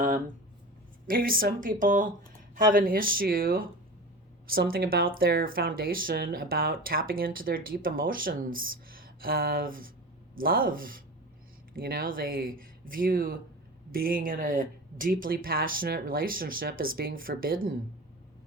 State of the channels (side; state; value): both; normal; correlation 0.32